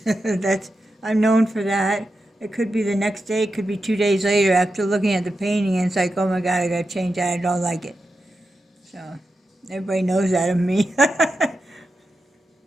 I'm known for that. It could be the next day. It could be 2 days later after looking at the painting, and it's like, oh my God, I got to change that. I don't like it. So everybody knows that of me.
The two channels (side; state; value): both; normal; correlation 0.89